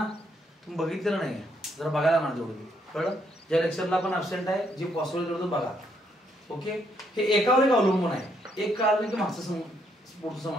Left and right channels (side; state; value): both; normal; correlation 0.73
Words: तुम्ही बघितलं नाही, जरा बघायला म्हणा तेवढं. कळलं? ज्या लेक्चरला आपण ऍब्सेंट आहे, जे पॉसिबल करतो बघा. ओके, हे एकावर एक अवलंबून आहे. एक कळलं की मागचं पुढचं